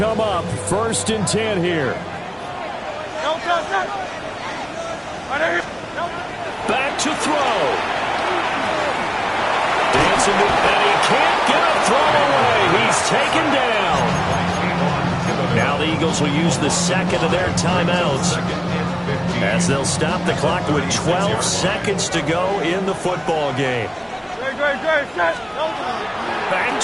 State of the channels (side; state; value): both; identical; correlation 1.00